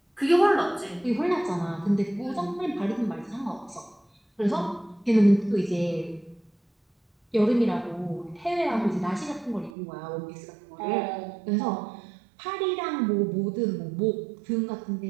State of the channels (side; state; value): left; drops out; at 9.7 s